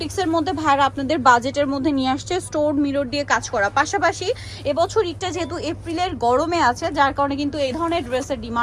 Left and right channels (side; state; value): both; identical; correlation 1.00